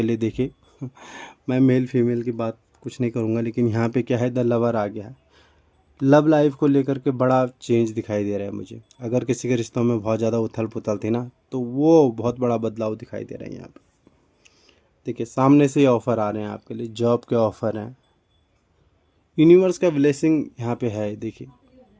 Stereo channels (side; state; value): both; identical; correlation 1.00